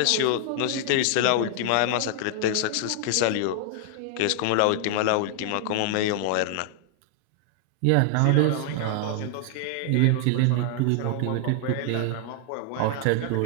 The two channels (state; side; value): different; both; correlation 0.00